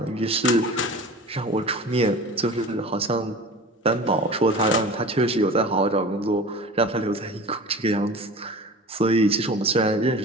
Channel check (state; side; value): normal; both; correlation 0.37